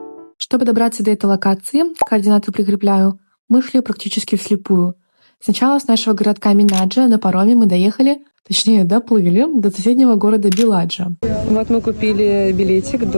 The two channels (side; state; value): both; inverted; correlation -1.00